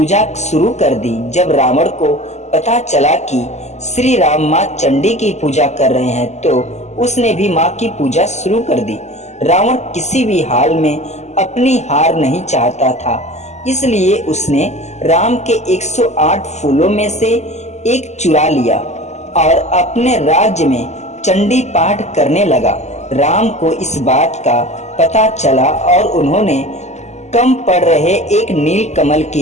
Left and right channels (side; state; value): right; late; 0.33 ms